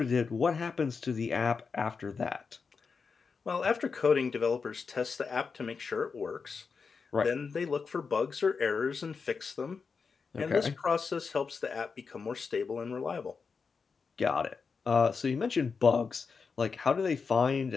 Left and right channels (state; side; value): quieter; right; 5.2 dB